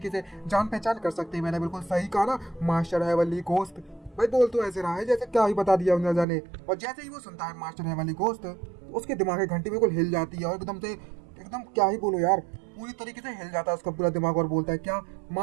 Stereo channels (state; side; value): drops out; left; at 6.2 s